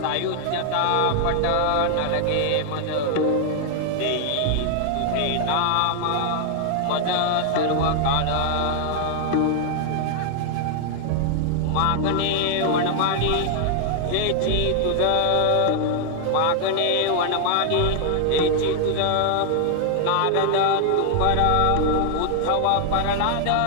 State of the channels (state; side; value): different; both; correlation 0.00